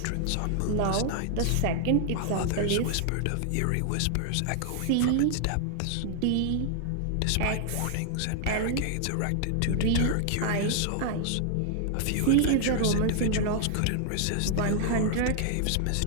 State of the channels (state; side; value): different; both; correlation 0.00